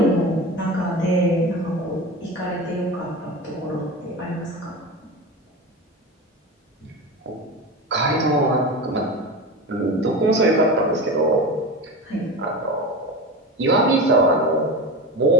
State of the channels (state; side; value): normal; both; correlation 0.27